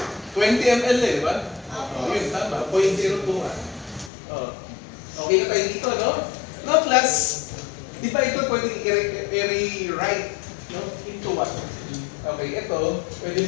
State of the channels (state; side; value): drops out; right; at 4.1 s